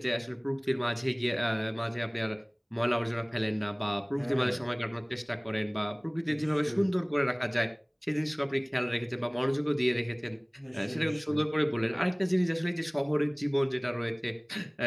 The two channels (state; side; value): identical; both; correlation 1.00